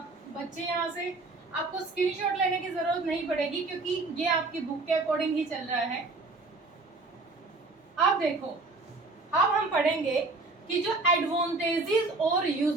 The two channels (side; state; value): left; quieter; 3.5 dB